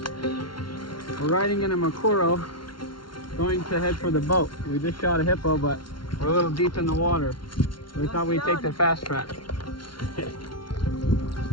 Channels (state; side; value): late; right; 0.73 ms